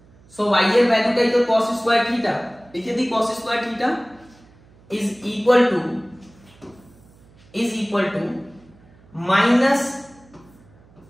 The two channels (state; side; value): noise; right; hum, 27 dB below the sound